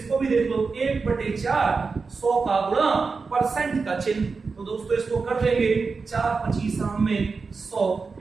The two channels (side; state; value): left; quieter; 4.6 dB